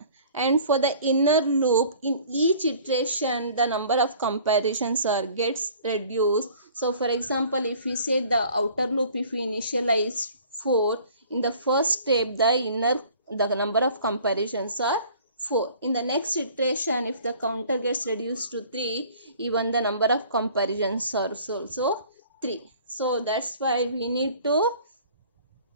And for the inner loop, in each iteration the number of comparisons gets reduced. So for example, if we say the outer loop, if we initialize 4, in the first step the number of comparisons are 4. In the next iteration, if the counter gets reduced to 3, even the number of comparisons are also 3. So that's why we need to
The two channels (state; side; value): inverted; both; correlation -0.51